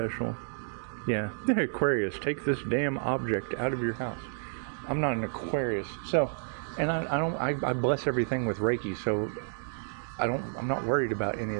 Yeah, Aquarius, take this damn object out of your house. I'm not an Aquarius, so. And I bless everything with Reiki, so I'm not worried about any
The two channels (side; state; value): left; silent; digital silence